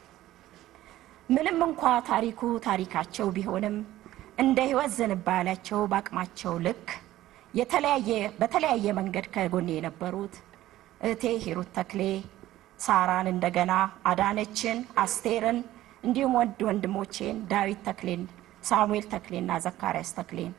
ምንም እንኳ ታሪኩ ታሪካቸው ቢሆንም እንደ ህይወት ዝንባሌያቸው በአቅማቸው ልክ በተለያየ መንገድ ከጎኔ የነበሩት እህቴ ሂሩት ተክሌ፣ ሳራን፣ እንደገና አዳነችን፣ አስቴርን እንዲሁም ወንድሞቼን ዳዊት ተክሌን፣ ሳሙኤል ተክሌና ዘካርያስ ተክሌን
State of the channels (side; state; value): left; quieter; 14.7 dB